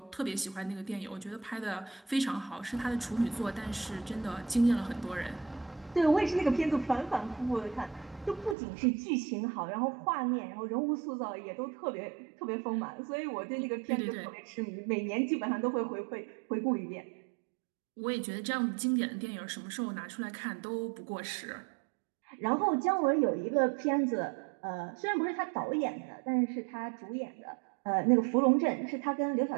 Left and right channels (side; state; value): left; drops out; at 8.6 s